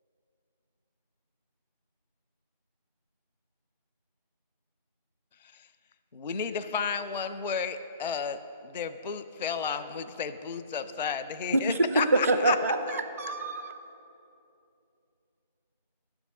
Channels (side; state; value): both; inverted; correlation -0.50